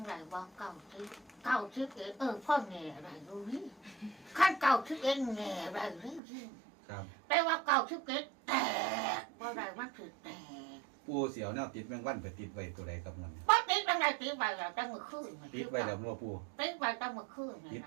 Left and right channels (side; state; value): left; drops out; at 6.2 s